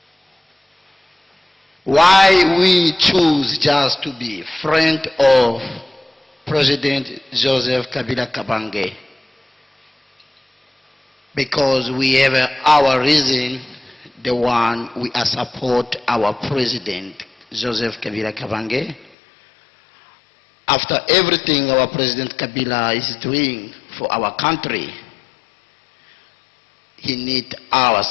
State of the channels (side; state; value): right; drops out; at 19.2 s